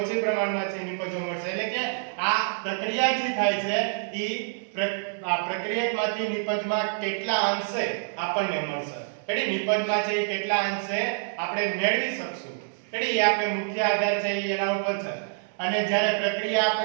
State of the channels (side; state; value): left; silent; 58 dB below the other